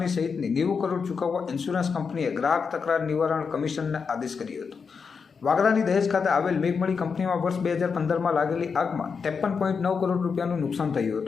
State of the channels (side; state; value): right; quieter; 5.6 dB